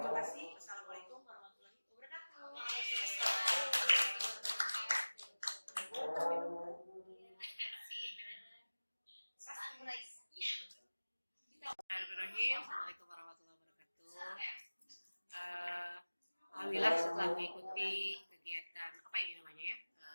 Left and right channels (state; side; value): inverted; both; correlation -1.00